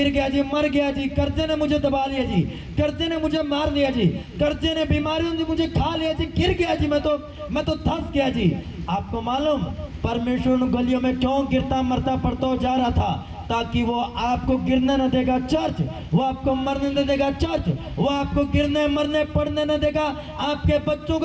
गया जी, मर गया जी, कर्जे ने मुझे दबा लिया जी, कर्जे ने मुझे मार लिया जी, कर्जे ने बीमारियों ने मुझे खा लिया जी, गिर गया जी, मैं तो धंस गया जी। आपको मालूम परमेश्वर उन गलियों में क्यों गिरता मरता पड़ता जा रहा था? ताकि वो आपको गिरने न देगा चर्च, वो आपको मरने न देगा चर्च, वो आपको गिरने मरने पड़ने न देगा, आपके बच्चों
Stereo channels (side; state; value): both; identical; correlation 1.00